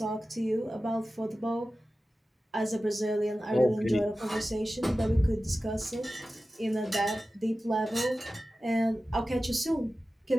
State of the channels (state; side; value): normal; both; correlation 0.95